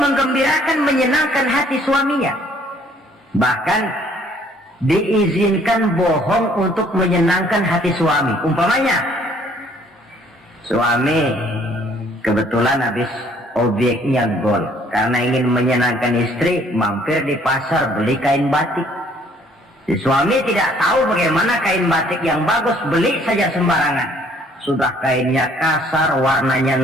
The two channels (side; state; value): both; normal; correlation 0.61